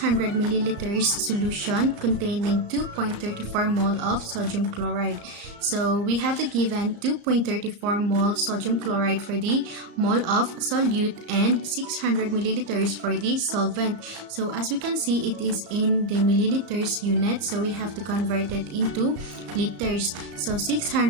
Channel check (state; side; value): late; left; 35 ms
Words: milliliters solution containing 2.34 mole of sodium chloride? So we have the given 2.34 mole sodium chloride for the mole of solute and 600 milliliters for the solvent. So as we can see, it is in the milliliters unit, so we have to convert it into liters. So